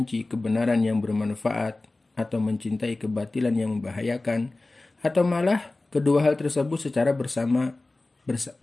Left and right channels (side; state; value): right; quieter; 3.0 dB